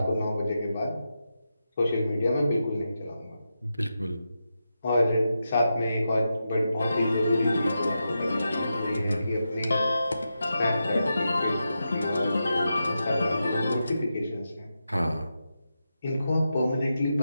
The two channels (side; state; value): both; inverted; correlation -0.88